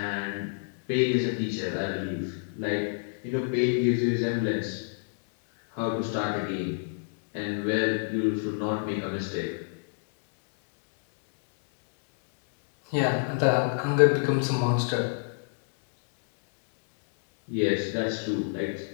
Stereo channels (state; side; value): silent; right; digital silence